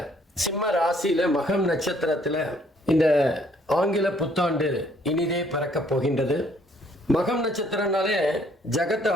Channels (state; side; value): normal; both; correlation 0.64